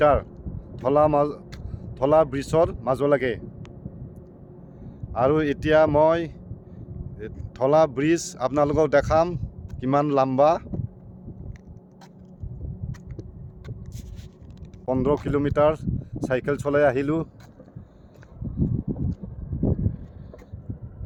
ধলা ব্ৰিজৰ মাজলৈকে। আৰু এতিয়া মই ধলা ব্ৰিজ আপোনালোকক দেখাম কিমান লম্বা। 15 কিলোমিটাৰ চাইকেল চলাই আহিলোঁ।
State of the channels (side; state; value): both; identical; correlation 1.00